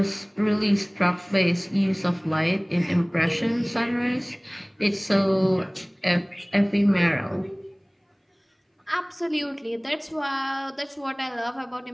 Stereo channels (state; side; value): identical; both; correlation 1.00